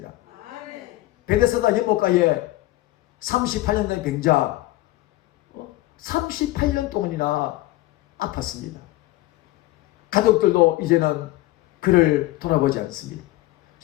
베데스다 연못가에 38년 된 병자 38년 동안이나 아팠습니다. 가족들도 이제는 그를 돌아보지 않습니다.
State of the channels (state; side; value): quieter; right; 17.7 dB